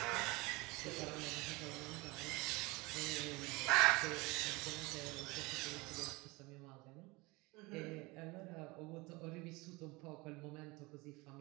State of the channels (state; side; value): quieter; left; 24.0 dB